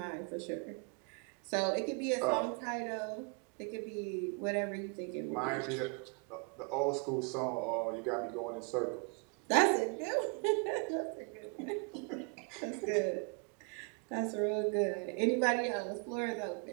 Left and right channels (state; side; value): quieter; left; 36.7 dB